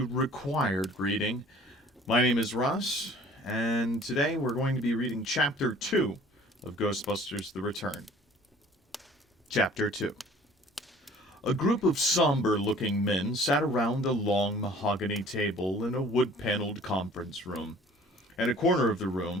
Required Reading. My name is Russ, and today we're going to be reading Chapter 2 of Ghostbusters The Return. Chapter 2. A group of somber-looking men sat around a long mahogany table in a wood-paneled conference room. At a corner of the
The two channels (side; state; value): both; normal; correlation 0.51